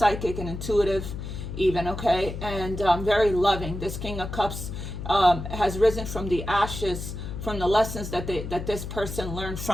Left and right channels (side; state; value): left; noise; hum, 7 dB below the sound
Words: and intuitive even, okay, and very loving. This King of Cups has risen from the ashes, from the lessons that this person learned